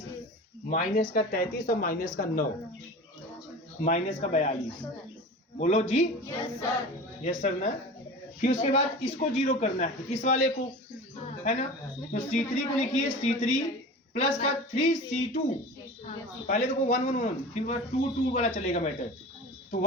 माइनस का 33 और माइनस का 9, माइनस का 42। बोलो जी, यस सर ना। फिर उसके बाद इसको 0 करना है, इस वाले को, है ना। तो C3 को लिखिए, C3 प्लस का 3C2, पहले देखो 1, 1, 1, फिर 2, 2 वाला चलेगा मैटर। तो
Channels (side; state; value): both; normal; correlation 0.35